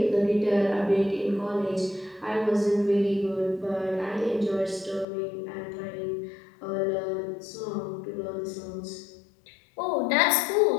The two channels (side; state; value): right; drops out; at 5.1 s